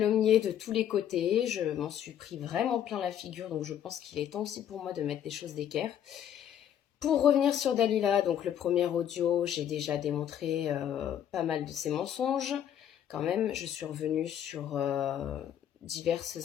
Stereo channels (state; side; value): quieter; right; 10.0 dB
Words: de tous les côtés, je m'en suis pris vraiment plein la figure, donc je pense qu'il est temps aussi pour moi de mettre des choses d'équerre. Pour revenir sur Dalila, donc le premier audio, j'ai déjà démontré pas mal de ses mensonges. Quand même, je suis revenue sur